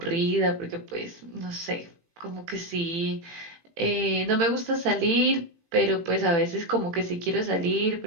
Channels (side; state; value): left; late; 18 ms